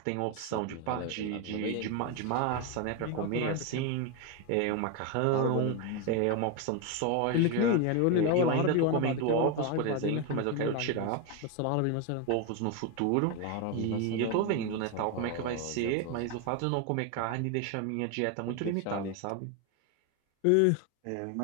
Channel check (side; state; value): both; different; correlation 0.02